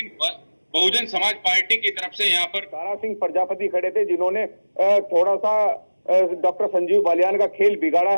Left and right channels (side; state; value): both; inverted; correlation -1.00